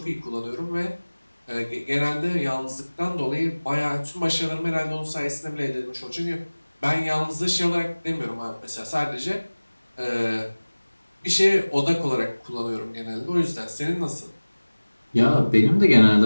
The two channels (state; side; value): inverted; both; correlation -1.00